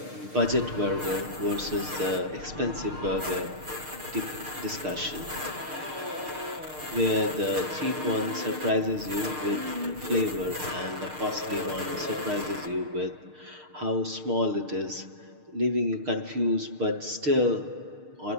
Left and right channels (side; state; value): left; late; 6.6 ms